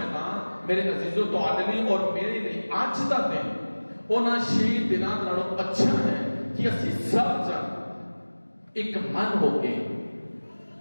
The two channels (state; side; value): inverted; both; correlation -1.00